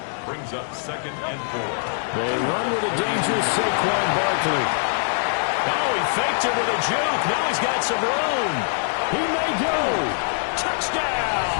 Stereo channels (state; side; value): silent; right; digital silence